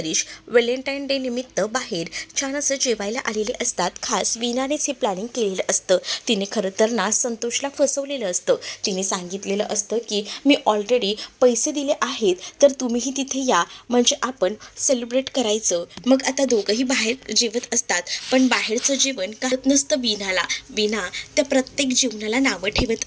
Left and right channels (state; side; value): identical; both; correlation 1.00